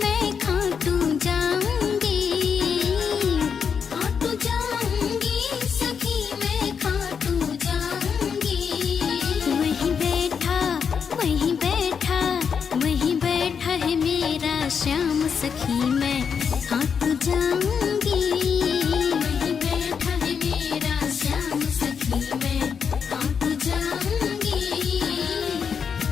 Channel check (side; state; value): right; quieter; 6.6 dB